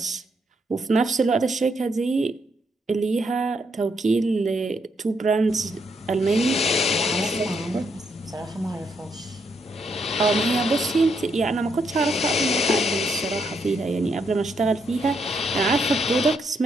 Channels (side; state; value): both; normal; correlation 0.77